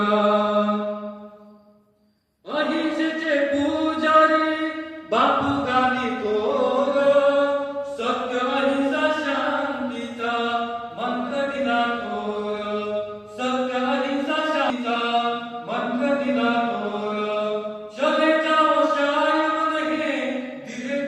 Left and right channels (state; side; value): identical; both; correlation 1.00